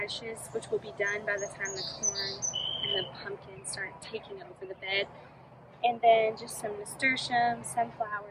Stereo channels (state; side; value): identical; both; correlation 1.00